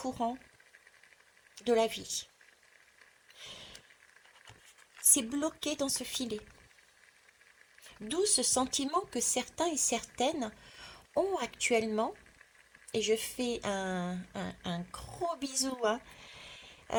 de la vie. C'est bloqué dans ce filet. D'où ce sentiment que certains et certaines ont actuellement, et je fais un gros bisou, hein,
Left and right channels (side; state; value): both; identical; correlation 1.00